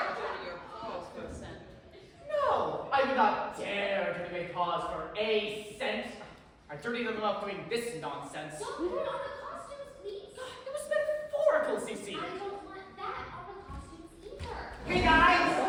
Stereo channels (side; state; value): both; identical; correlation 1.00